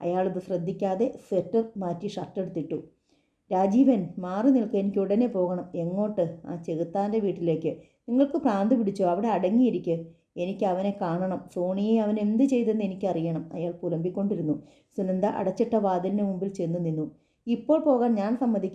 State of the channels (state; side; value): identical; both; correlation 1.00